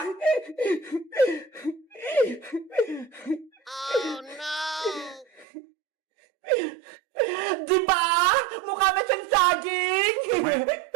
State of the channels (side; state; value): left; drops out; at 5.5 s